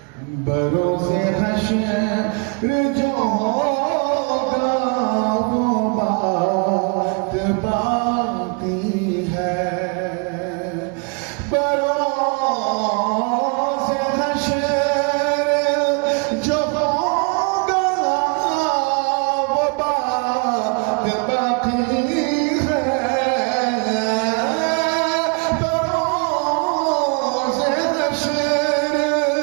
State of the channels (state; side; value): quieter; left; 34.5 dB